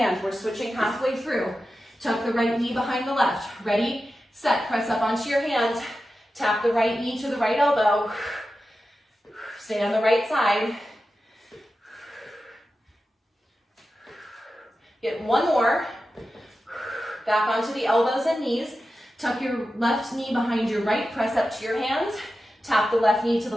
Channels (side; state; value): both; normal; correlation 0.92